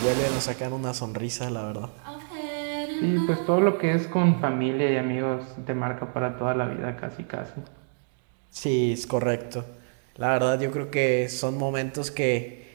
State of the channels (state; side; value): silent; left; digital silence